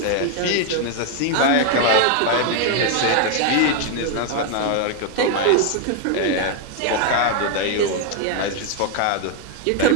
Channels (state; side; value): different; both; correlation 0.01